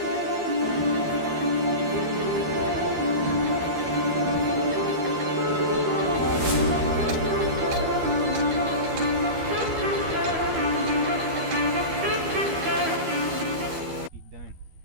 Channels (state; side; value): late; left; 12 ms